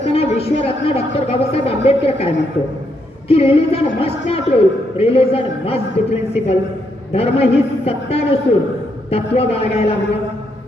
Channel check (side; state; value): both; normal; correlation 0.77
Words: विश्वरत्न डॉक्टर बाबासाहेब आंबेडकर काय म्हणतो की religion must not rule, religion must be principle. धर्म ही सत्ता नसून तत्व बाळगायला हवं.